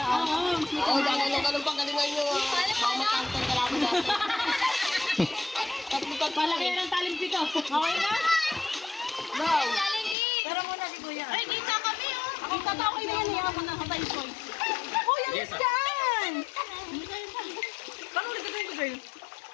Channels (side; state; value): right; drops out; at 10.2 s